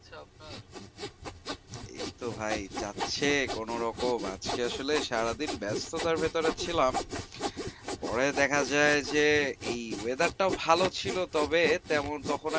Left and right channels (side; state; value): both; identical; correlation 1.00